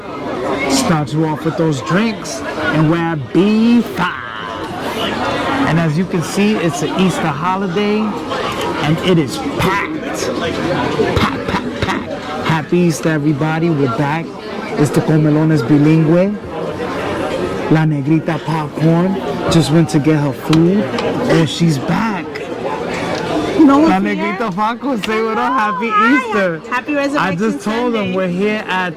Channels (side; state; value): both; identical; correlation 1.00